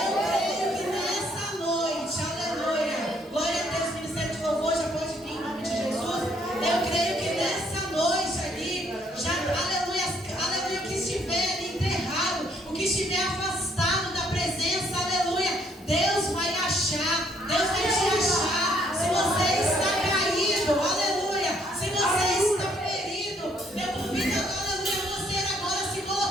creio que nessa noite, aleluia, glória a Deus, ministério de louvor já pode vir em nome de Jesus. Eu creio que nessa noite ali, já, aleluia, o que estiver ali enterrado, o que estiver afastado da presença, aleluia, Deus vai achar, Deus vai te achar. Se você está caído, aleluia, se você está ferido, eu convido, aleluia, você agora se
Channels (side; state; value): both; normal; correlation 0.67